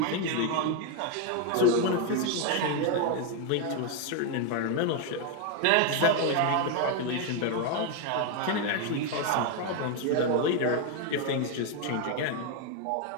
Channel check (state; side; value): different; both; correlation 0.01